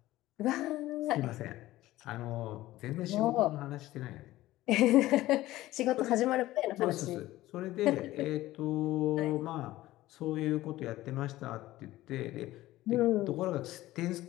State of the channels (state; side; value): quieter; right; 16.3 dB